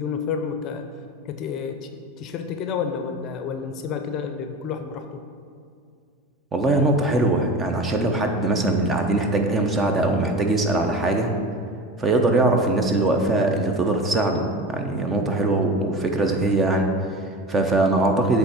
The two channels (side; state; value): both; normal; correlation 0.32